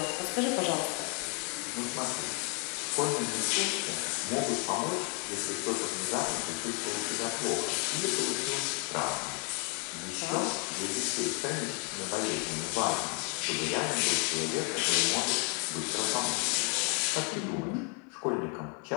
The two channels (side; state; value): right; quieter; 37.0 dB